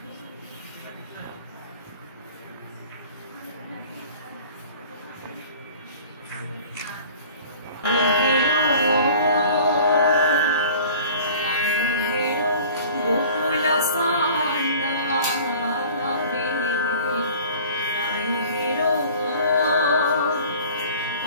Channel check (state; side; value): inverted; both; correlation -0.46